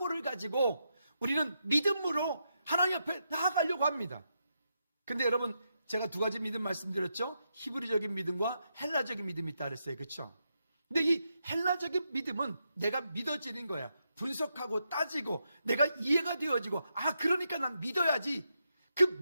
가지고 우리는 믿음으로 하나님 앞에 나아가려고 합니다. 근데 여러분 제가 두 가지 믿음 말씀드렸죠. 히브리적인 믿음과 헬라적인 믿음이 있다 그랬어요. 그렇죠? 근데 이 헬라적인 믿음은 내가 믿어지는 거야. 분석하고 따지고 내가 이해가 되어지고 그러니까 난 믿어야지. 그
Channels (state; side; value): inverted; both; correlation -0.83